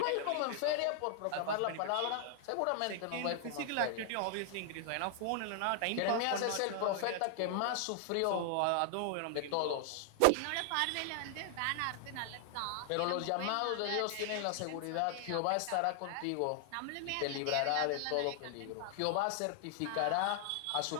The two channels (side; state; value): both; different; correlation 0.00